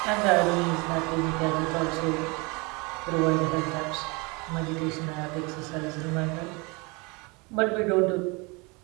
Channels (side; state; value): left; quieter; 27.8 dB